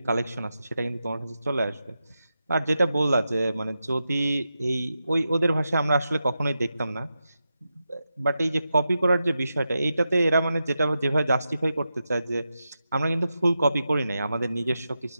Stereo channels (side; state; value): both; inverted; correlation -0.89